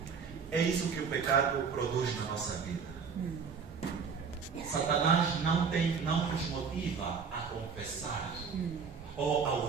é isso que o pecado produz na nossa vida. Satanás não nos motiva a confessar ou ao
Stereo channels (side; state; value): left; quieter; 5.9 dB